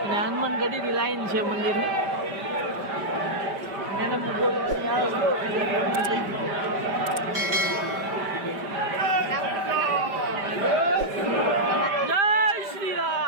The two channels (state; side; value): late; left; 5.1 ms